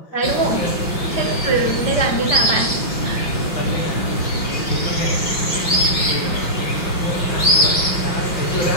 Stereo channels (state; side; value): late; right; 5.6 ms